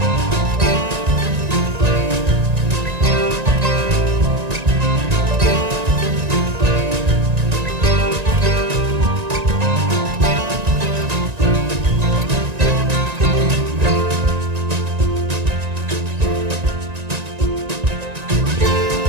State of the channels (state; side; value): late; left; 1.9 ms